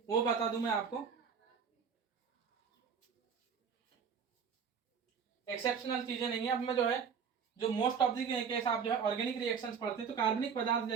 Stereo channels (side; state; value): left; quieter; 6.6 dB